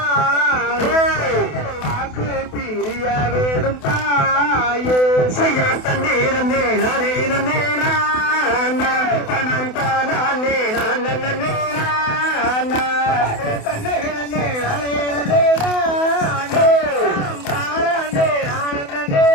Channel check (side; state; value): right; late; 28 ms